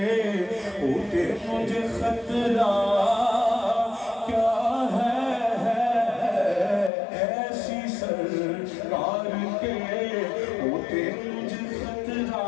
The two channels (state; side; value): drops out; right; at 6.9 s